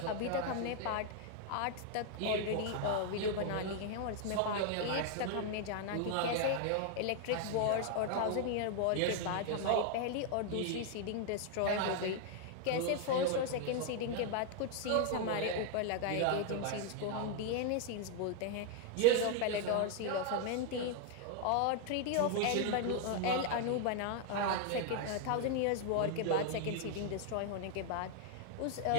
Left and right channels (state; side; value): different; both; correlation 0.00